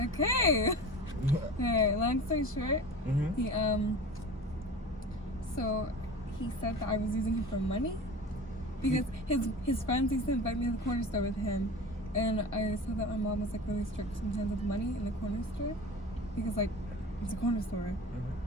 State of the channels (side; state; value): both; normal; correlation 0.35